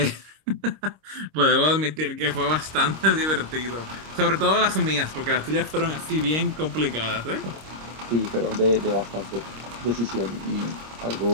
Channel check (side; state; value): left; late; 26 ms